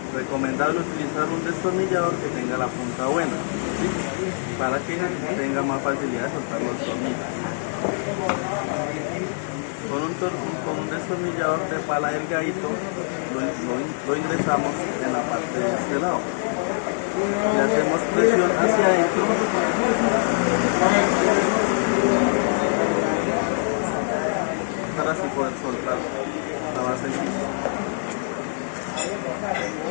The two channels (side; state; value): right; silent; digital silence